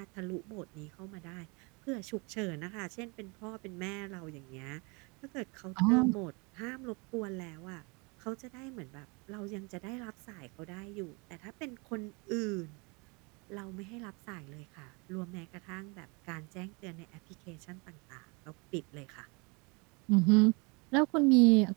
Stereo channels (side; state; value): left; quieter; 29.9 dB